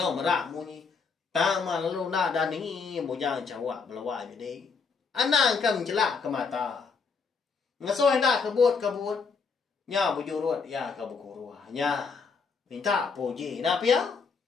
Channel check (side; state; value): right; quieter; 5.1 dB